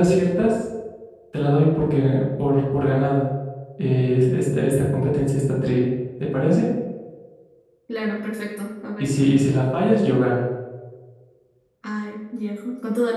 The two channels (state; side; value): identical; both; correlation 1.00